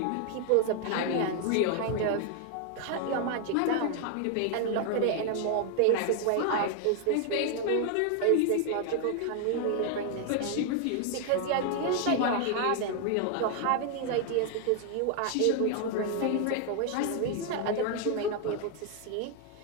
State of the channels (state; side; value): different; both; correlation 0.00